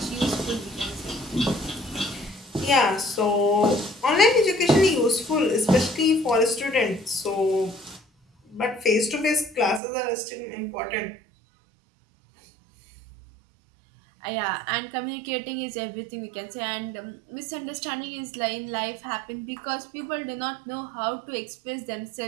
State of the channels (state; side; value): drops out; left; at 9.8 s